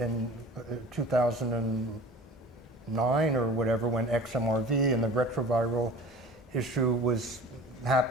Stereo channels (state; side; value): normal; both; correlation 0.41